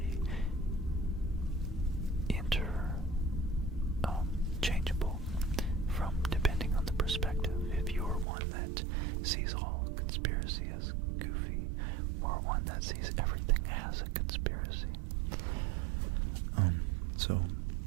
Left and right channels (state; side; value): drops out; left; at 8.2 s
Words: changeable from depending on the perspective. If you're one that sees all conspiracy as goofy, or one that sees everything as a conspiracy. So